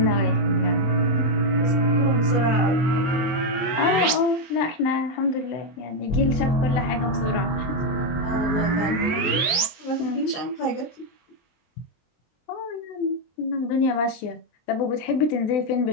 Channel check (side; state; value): right; late; 23 ms